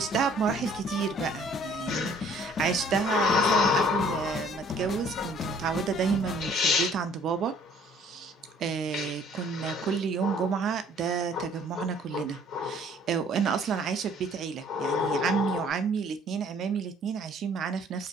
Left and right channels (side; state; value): both; normal; correlation 0.57